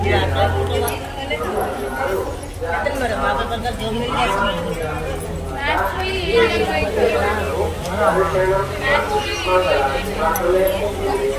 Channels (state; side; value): identical; both; correlation 1.00